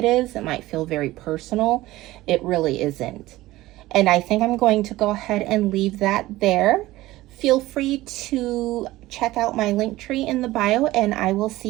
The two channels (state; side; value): quieter; left; 17.4 dB